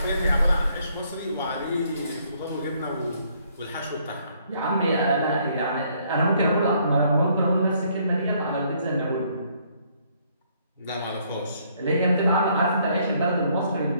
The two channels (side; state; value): both; inverted; correlation -0.67